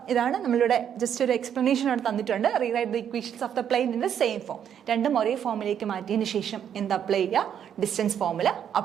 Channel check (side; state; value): left; quieter; 8.9 dB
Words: ഇതാണ് നമ്മളിവിടെ ജസ്റ്റ് ഒരു എക്സ്പ്ലനേഷൻ അവിടെ തന്നിട്ടുണ്ട്. Rewrite the equations of the plain in the same form. രണ്ടും ഒരേ ഫോമിലേക്ക് മാറ്റിയതിന് ശേഷം എന്ത് അപ്ലൈ ചെയ്യുക, ഡിസ്റ്റൻസ് ഫോമുല